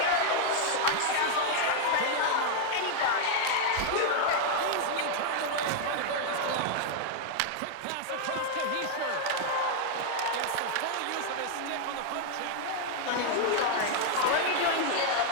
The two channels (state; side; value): different; both; correlation 0.00